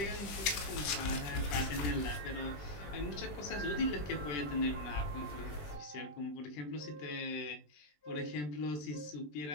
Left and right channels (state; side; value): late; right; 20 ms